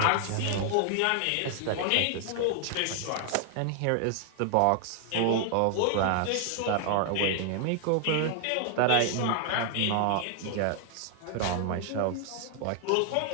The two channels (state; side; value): different; both; correlation 0.00